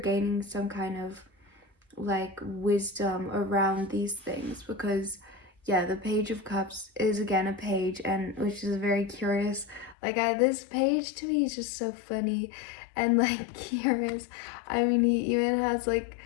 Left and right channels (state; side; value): drops out; right; at 10.0 s